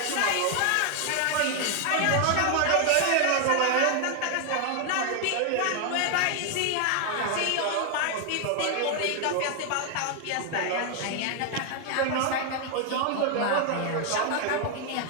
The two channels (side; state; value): both; different; correlation 0.00